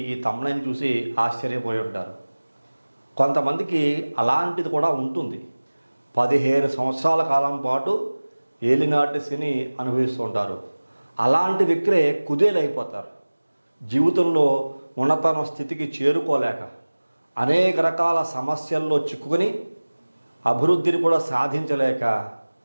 ఈ తమ్ముళ్ళని చూసి ఆశ్చర్యపోయి ఉంటారు. కొంతమందికి అలాంటిది కూడా ఉంటుంది. 15 సంవత్సరాల కాలం పాటు ఏలినాటి శని అనుభవిస్తూ ఉంటారు. అలాంటి వ్యక్తులే కుదేలైపోతారు. జీవితంలో ఉన్నతన స్థితికి చేరుకోలేక అనేక రకాల సమస్యల్లో చిక్కుకొని అభివృద్ధిని కూడా సాధించలేక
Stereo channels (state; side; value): inverted; both; correlation -1.00